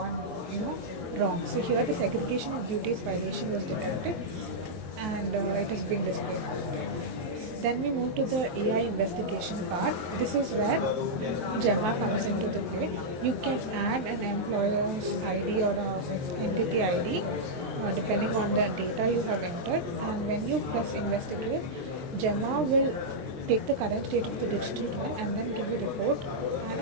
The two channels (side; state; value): left; late; 23 ms